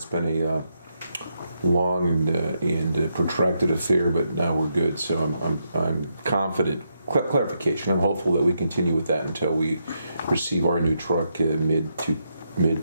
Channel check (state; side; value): inverted; both; correlation -0.81